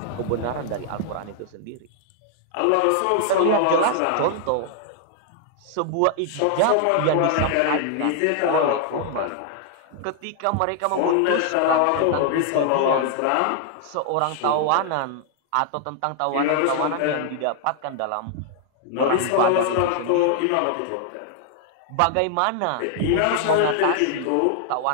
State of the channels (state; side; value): different; both; correlation 0.00